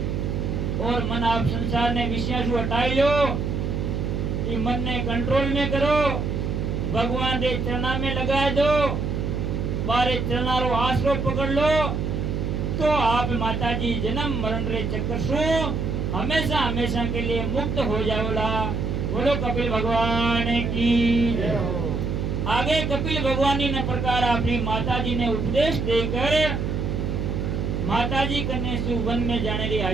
और मन आप संसार ने विषय से हटाई लो, कि मन ने कंट्रोल में करो, भगवान रे चरणा में लगा दो, बारे चरणा रो आसरो पकड़ लो, तो आप माताजी जन्म मरण रे चक्कर सु हमेशा हमेशा के लिए मुक्त हो जाओला। बोलो कपिल भगवान की जय हो। आगे कपिल भगवान ने प्रकार अपनी माताजी ने उपदेश देकर माताजी कन्या से वन में जाने की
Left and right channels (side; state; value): right; noise; hum, 1 dB below the sound